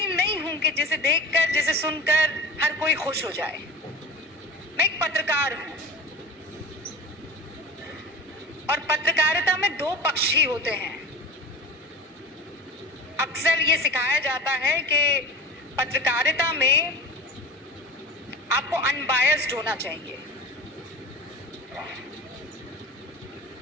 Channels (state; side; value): normal; both; correlation 0.34